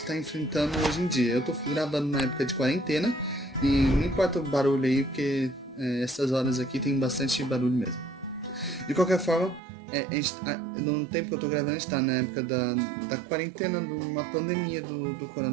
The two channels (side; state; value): left; drops out; at 9.6 s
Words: enfrentando hoje em dia. Eu tô gravando na época de quarentena e não importa o barulho aí, porque essas horas aqui tem bastante barulho mesmo. De qualquer forma, no tempo que eu tô gravando, a gente tá na época da quarentena, de uma pandemia do